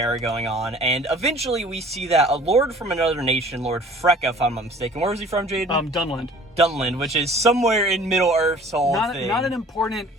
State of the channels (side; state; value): both; normal; correlation 0.49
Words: going on, and eventually we see that a lord from another nation, Lord Freka, if I'm not mistaken. Where was he from, Jaden? Dunland. Dunland, which is somewhere in Middle Earth's whole thing. Not an important